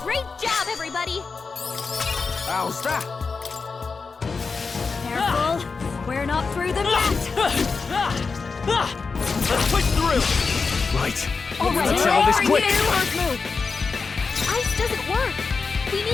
Great job, everybody! How's that? Careful! We're not through them yet! Let's push through! Right. All right, Let's settle this for quick. you. First move. Ice doesn't work. We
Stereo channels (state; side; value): quieter; right; 4.7 dB